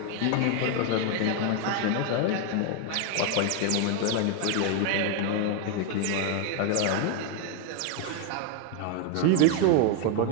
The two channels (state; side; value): different; both; correlation 0.01